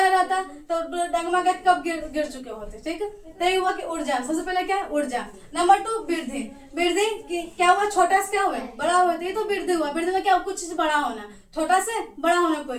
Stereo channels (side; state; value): both; identical; correlation 1.00